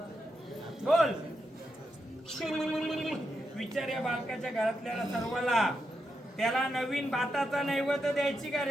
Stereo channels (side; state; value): both; normal; correlation 0.84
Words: बोल, विचार या बालकाच्या घरातल्या सर्वाला. त्याला नवीन भाताचा नैवेद्य द्यायची का